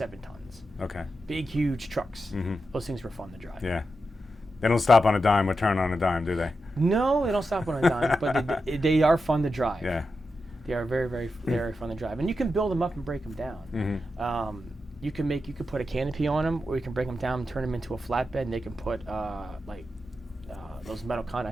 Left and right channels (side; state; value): both; normal; correlation 0.88